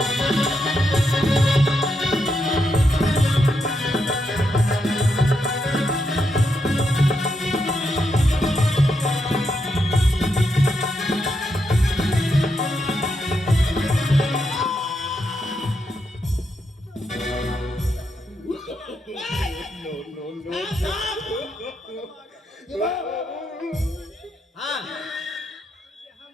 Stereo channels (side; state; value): both; normal; correlation 0.82